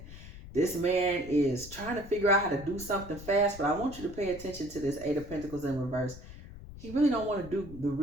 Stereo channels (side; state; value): left; noise; rumble, 15 dB below the sound